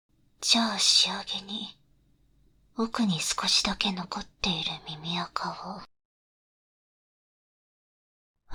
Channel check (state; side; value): identical; both; correlation 1.00